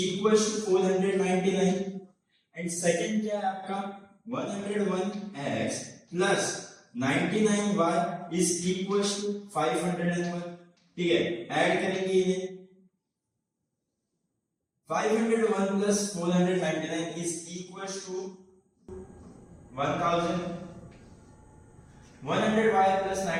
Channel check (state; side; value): identical; both; correlation 1.00